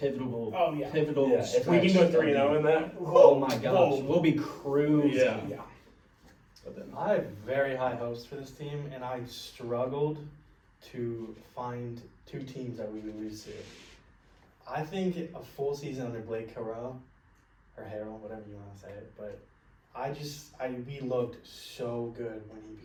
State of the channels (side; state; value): both; identical; correlation 1.00